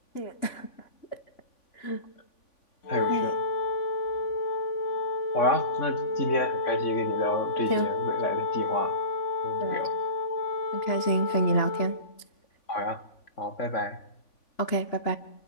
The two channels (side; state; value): right; late; 3.5 ms